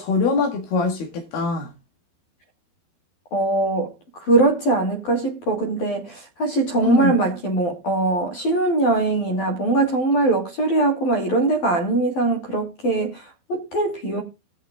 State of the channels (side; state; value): right; late; 12 ms